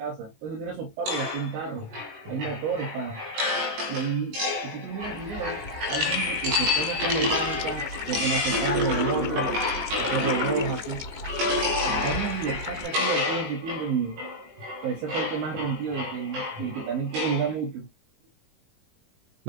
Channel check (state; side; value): late; left; 19 ms